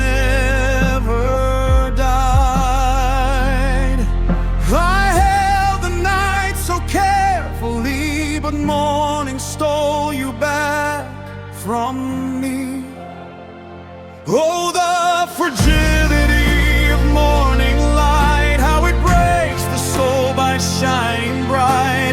died. I held the night so carefully, but morning stole you back from me. Oh, the fragility of morning light, how it breaks the soul by shining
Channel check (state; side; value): identical; both; correlation 1.00